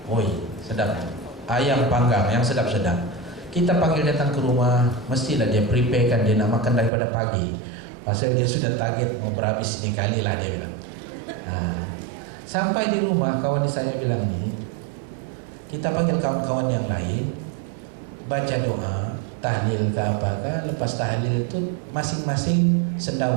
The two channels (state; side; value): drops out; left; at 6.9 s